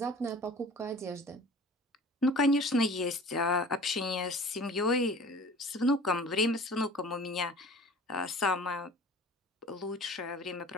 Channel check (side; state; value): both; normal; correlation 0.43